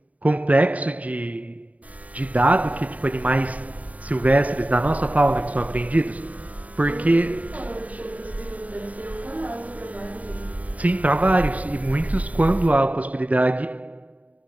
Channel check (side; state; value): left; late; 0.071 ms